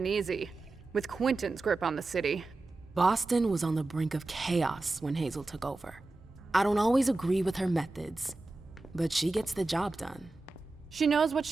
easy, with Quentin's grip on the city. Boston was on the brink of chaos when Hazel took over. I don't always agree with her methods, but she gets the job done. She knows what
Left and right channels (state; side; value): quieter; left; 3.2 dB